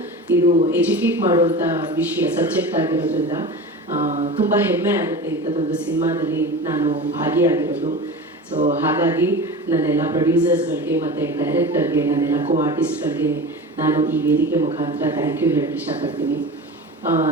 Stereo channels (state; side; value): normal; both; correlation 0.32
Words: ಇದು ಎಜುಕೇಟ್ ಮಾಡುವಂಥ ವಿಷಯ, ಸಬ್ಜೆಕ್ಟ್ ಆಗಿರೋದ್ರಿಂದ ತುಂಬ ಹೆಮ್ಮೆ ಆಗುತ್ತೆ ಇಂಥದ್ದೊಂದು ಸಿನಿಮಾದಲ್ಲಿ ನಾನು ಭಾಗಿಯಾಗಿರೋದು. ಸೊ ಹಾಗಾಗಿ ನನ್ನೆಲ್ಲ ಪ್ರೊಡ್ಯೂಸರ್ಸ್ಗಳಿಗೆ ಮತ್ತು ಡೈರೆಕ್ಟರ್ಗೆ, ನನ್ನೆಲ್ಲ ಕೋ ಆರ್ಟಿಸ್ಟ್ಗಳಿಗೆ ನಾನು ಈ ವೇದಿಕೆ ಮುಖಾಂತರ ಥ್ಯಾಂಕ್ ಯು ಹೇಳಕ್ಕೆ ಇಷ್ಟಪಡ್ತೀನಿ.